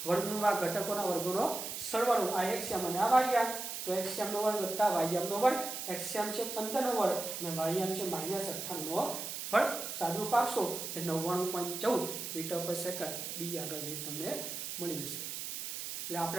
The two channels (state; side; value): noise; right; hiss, 6 dB below the sound